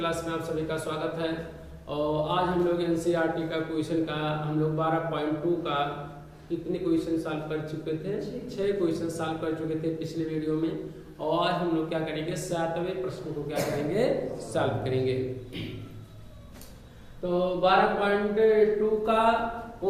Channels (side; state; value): both; identical; correlation 1.00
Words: में आप सभी का स्वागत है। और आज हम लोग एनसीईआरटी का क्वेश्चन का हम लोग 12.2 का कितने क्वेश्चन सॉल्व कर चुके थे? 6 क्वेश्चन सॉल्व कर चुके थे पिछले वीडियो में। और आज हम लोग क्या करेंगे, 7वें प्रश्न को क्या करेंगे, सॉल्व करेंगे। तो 12.2 का